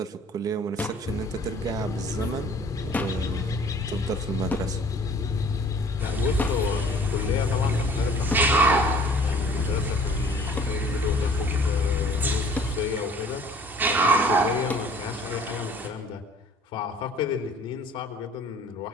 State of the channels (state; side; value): normal; both; correlation 0.52